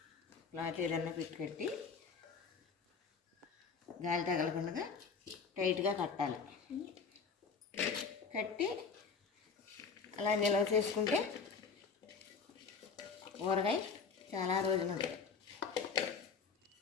క్లాత్ ఏదైనా పెట్టి కట్టి గాలి తగలకుండా టైట్గా కట్టాలి. కట్టి అలా నిల్వ చేసుకుంటే ఊరగాయ చాలా రోజులు ఉంటాయి.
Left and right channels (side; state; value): right; quieter; 5.3 dB